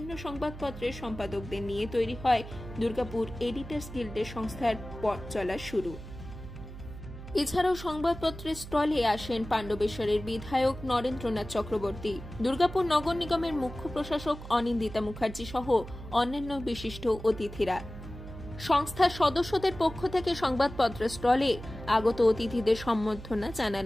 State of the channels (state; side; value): noise; right; hum, 12 dB below the sound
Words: সংবাদপত্রের সম্পাদকদের নিয়ে তৈরি হয় দুর্গাপুর এডিটর্স গিল্ডের সংস্থার পথ চলা শুরু। এছাড়াও সংবাদপত্রের স্টলে আসেন পাণ্ডবেশ্বরের বিধায়ক নরেন্দ্রনাথ চক্রবর্তী, দুর্গাপুর নগর নিগমের মুখ্য প্রশাসক অনিন্দিতা মুখার্জি সহ অন্যান্য বিশিষ্ট অতিথিরা। সংস্থার সদস্যদের পক্ষ থেকে সংবাদপত্রের স্টলে আগত অতিথিদের সম্বর্ধনা